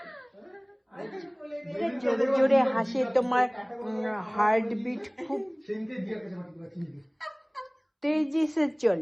জোরে জোরে হাসে, তোমার हार्टबीट खूब সেদিনকে দিয়ার কাছে মাটি করে কিনে দিই। तेजी से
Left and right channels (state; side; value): identical; both; correlation 1.00